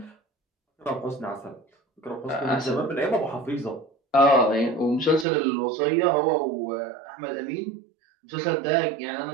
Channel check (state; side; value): drops out; left; at 5.2 s